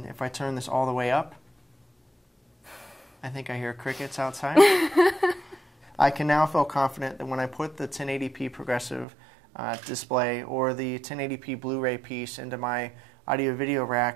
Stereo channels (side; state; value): left; drops out; at 9.1 s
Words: if I turn this all the way up, I think I hear crickets outside. I can now feel confident that when I put the 1080p progressive display or the 1080p Blu-ray piece into my audio-video